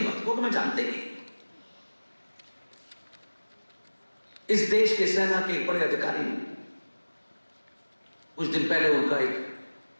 मत, को मैं जानते नहीं। इस देश के सेना के एक बड़े अधिकारी ने कुछ दिन पहले उनका एक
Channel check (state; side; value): inverted; both; correlation -1.00